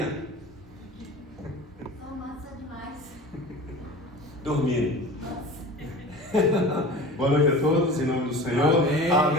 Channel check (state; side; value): normal; both; correlation 0.37